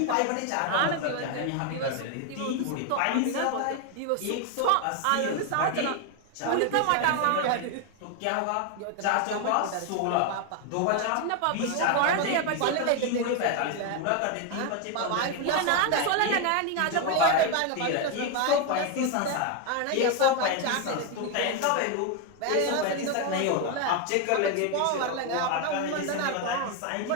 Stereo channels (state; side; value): different; both; correlation 0.01